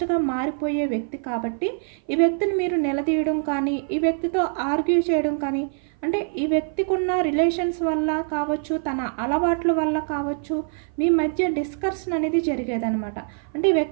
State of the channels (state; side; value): silent; left; 56 dB below the other